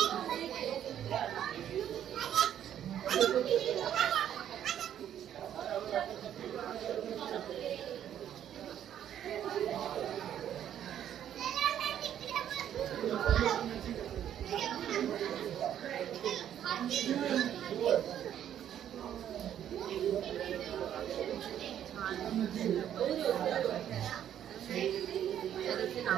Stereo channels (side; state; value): left; quieter; 10.3 dB